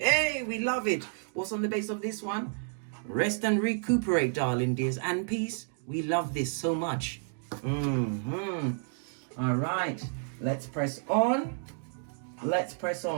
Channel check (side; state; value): left; silent; digital silence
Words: we love it. What's on the base of this one? Rest and recuperate, darling dears. And peace. We love this so much. All right, let's press on. Let's press